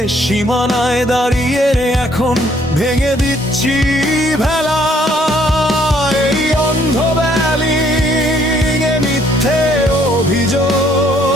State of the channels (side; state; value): both; normal; correlation 0.65